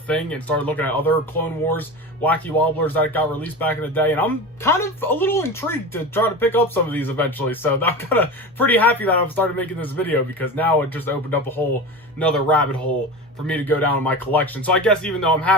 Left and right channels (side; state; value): both; normal; correlation 0.28